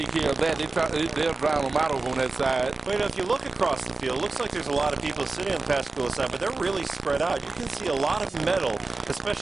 care of that. They'll drown them out over on that side. Well, if you look across the field, it looks like there's a lot of people sitting on the Pascagoula side, but they're really spread out. You can see a lot of metal,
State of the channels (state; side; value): quieter; left; 3.6 dB